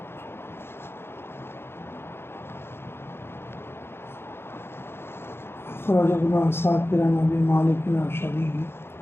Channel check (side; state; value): right; late; 0.11 ms